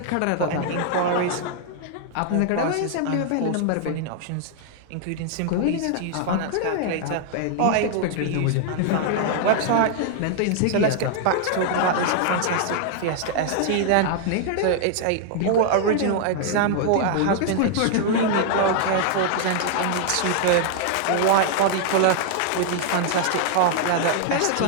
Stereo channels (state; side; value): different; both; correlation 0.00